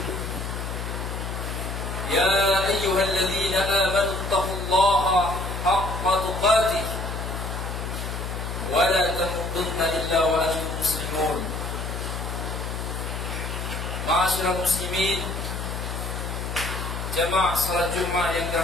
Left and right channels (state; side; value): noise; left; hum, 5 dB below the sound